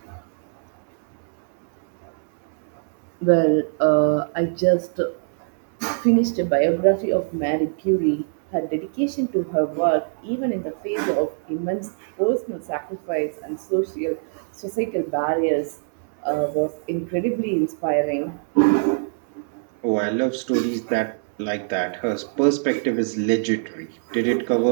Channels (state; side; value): silent; left; digital silence